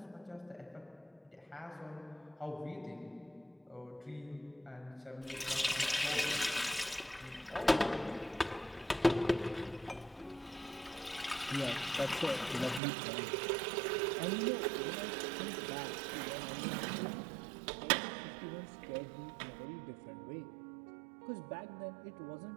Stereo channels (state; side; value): drops out; left; at 12.8 s